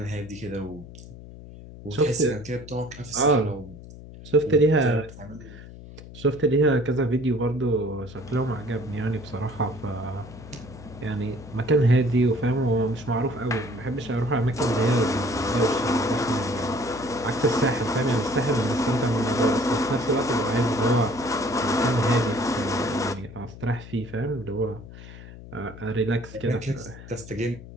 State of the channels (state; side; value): noise; left; hum, 16 dB below the sound